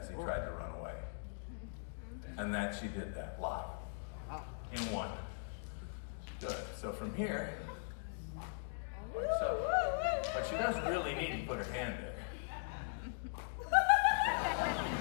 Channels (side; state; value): right; silent; digital silence